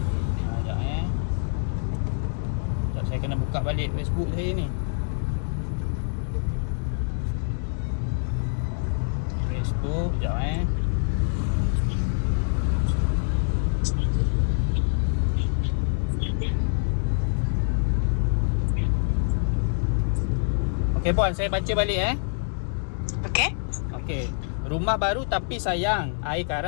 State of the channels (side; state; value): right; silent; digital silence